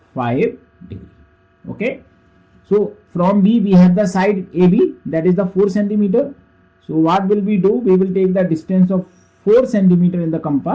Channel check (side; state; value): both; identical; correlation 1.00